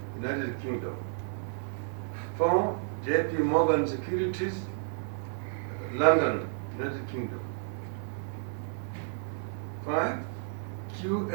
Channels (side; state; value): left; silent; 57 dB below the other